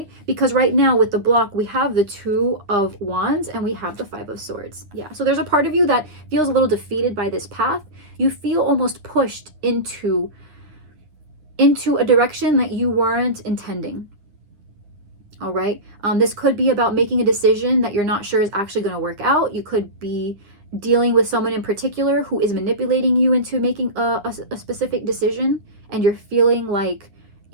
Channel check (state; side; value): late; left; 9.8 ms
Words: Because right now with the block, we have the Two of Wands and we have the Five of Swords. Yeah. So there's a part of you that feels a little defeated by this path. You feel almost pushed into a direction that you weren't intending. All right. This could be about making a decision that you're not sure is actually going to work out. You could be dealing with someone in particular who is manipulating you into making a specific decision, and you're feeling like